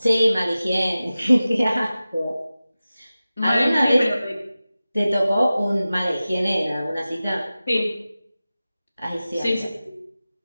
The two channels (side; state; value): both; inverted; correlation -0.96